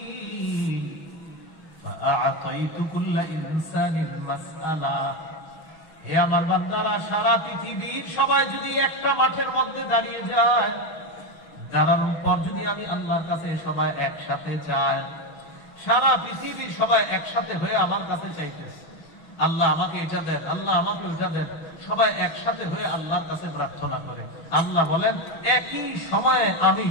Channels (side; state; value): right; late; 6.2 ms